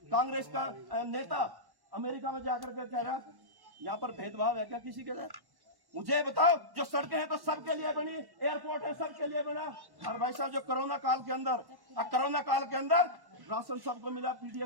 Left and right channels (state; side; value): late; left; 1.1 ms